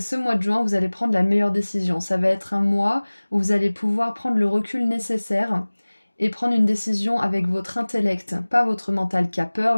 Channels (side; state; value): both; inverted; correlation -1.00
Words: mois de juin, vous allez prendre la meilleure décision. Ça va être un mois où vous allez pouvoir prendre le recul nécessaire et prendre une décision avec votre intellect. Pas votre mental qui a peur,